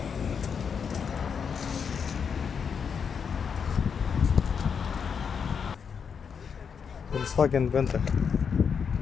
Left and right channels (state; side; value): quieter; right; 6.6 dB